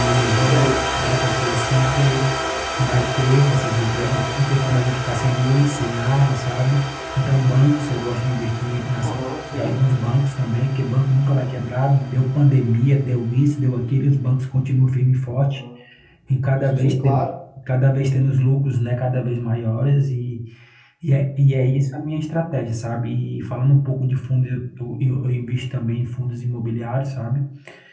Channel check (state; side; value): identical; both; correlation 1.00